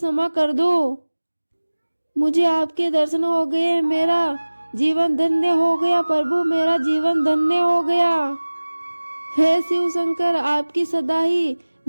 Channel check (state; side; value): inverted; both; correlation -1.00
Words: कर दो। मुझे आपके दर्शन हो गए, मेरा जीवन धन्य हो गया प्रभु, मेरा जीवन धन्य हो गया। हे शिव शंकर, आपकी सदा ही